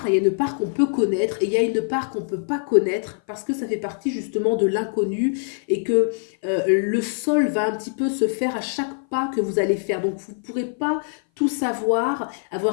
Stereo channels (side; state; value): right; silent; 58 dB below the other